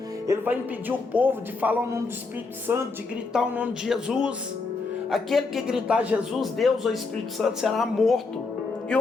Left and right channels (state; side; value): quieter; right; 4.0 dB